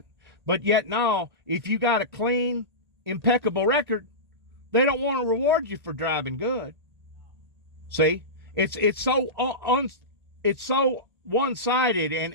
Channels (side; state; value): left; late; 1.8 ms